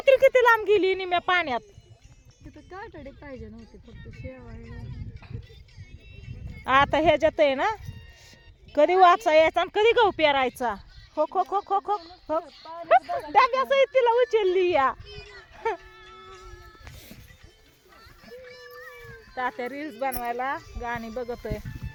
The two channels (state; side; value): identical; both; correlation 1.00